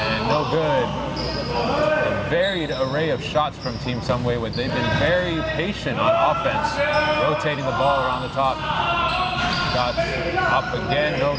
no good. A varied array of shots from Team Sunway, where they've been very patient on offense, rotating the ball around the top. Shot up again, no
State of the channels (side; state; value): both; identical; correlation 1.00